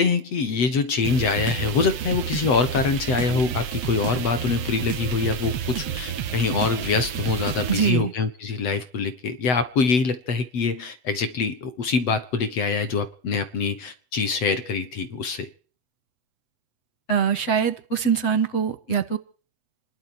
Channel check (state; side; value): late; right; 8.0 ms